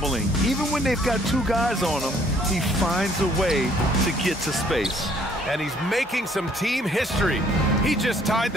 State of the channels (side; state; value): both; normal; correlation 0.62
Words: Even when they've got 2 guys on him, he finds a way to get to space. And he's making some team history. He just tied